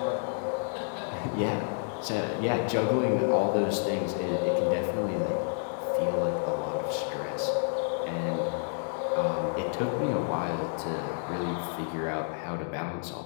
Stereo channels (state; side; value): silent; right; digital silence